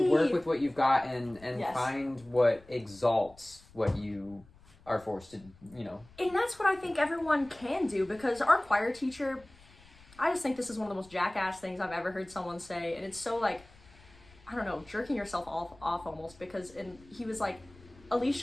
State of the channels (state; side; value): noise; left; rumble, 25 dB below the sound